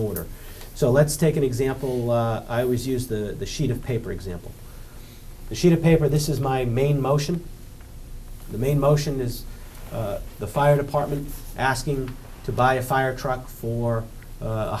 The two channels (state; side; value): identical; both; correlation 1.00